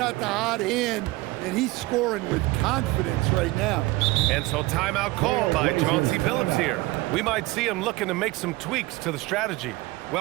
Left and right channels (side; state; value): left; quieter; 20.5 dB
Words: the hot hand, and he's scoring with confidence right now. And so timeout called by Chauncey Billups here. We might see him looking to make some tweaks to the strategy.